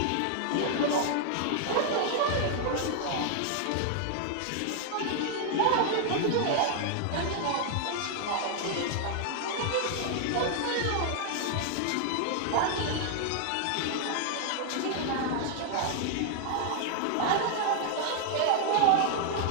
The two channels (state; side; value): different; both; correlation 0.00